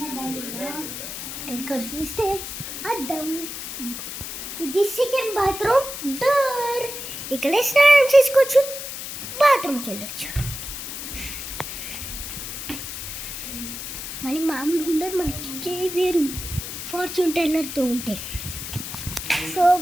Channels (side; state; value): left; noise; hiss, 7 dB below the sound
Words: ఇక్కడ చూస్తే అద్దం, ఇది సెకండ్ బాత్రూమ్ డోర్. ఇక్కడే స్నానం చేసుకోవచ్చు, బాత్రూమ్కి వెళ్ళొచ్చు. మళ్ళీ మామూలుగా ఉండదు, మనకి వేరు ఫార్చ్యూన్ టెల్లర్తో ఉంటే. సో